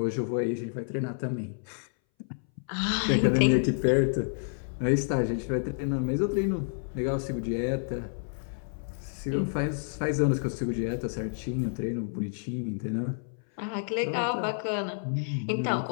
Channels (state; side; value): silent; right; 58 dB below the other